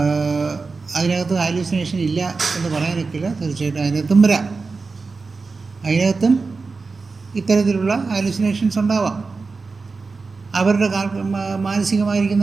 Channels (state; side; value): quieter; left; 4.3 dB